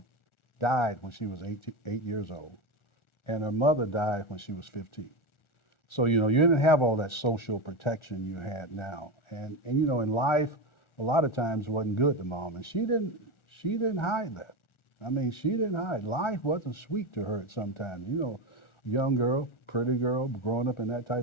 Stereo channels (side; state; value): right; late; 1.4 ms